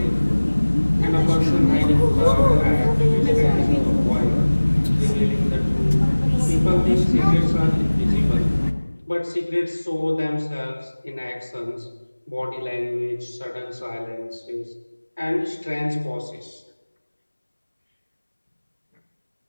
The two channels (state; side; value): inverted; both; correlation -1.00